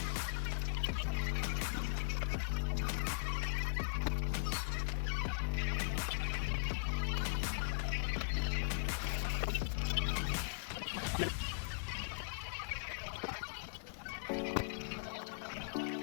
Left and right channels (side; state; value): right; silent; digital silence